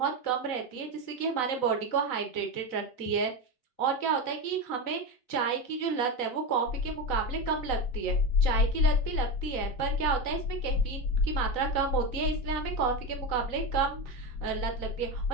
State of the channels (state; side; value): late; right; 3.9 ms